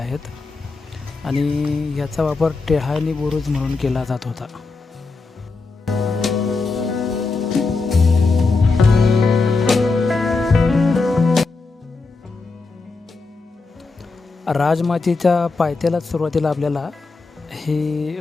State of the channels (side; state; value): right; quieter; 3.9 dB